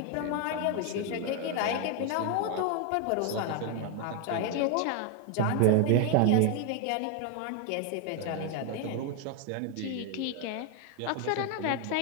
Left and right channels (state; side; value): different; both; correlation 0.01